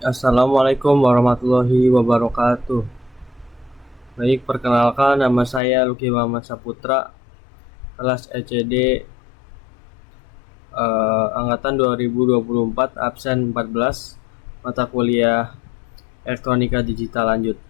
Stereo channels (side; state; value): right; drops out; at 5.6 s